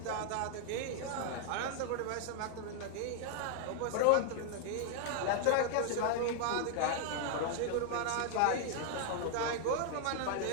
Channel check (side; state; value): both; different; correlation 0.00